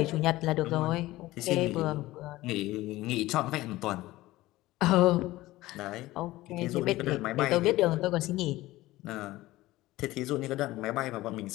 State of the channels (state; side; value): quieter; right; 17.6 dB